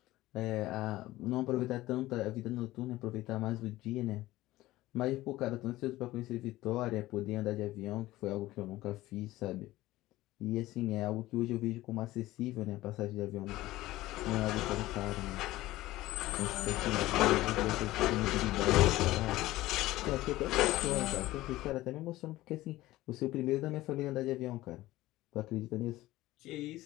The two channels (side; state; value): right; quieter; 17.1 dB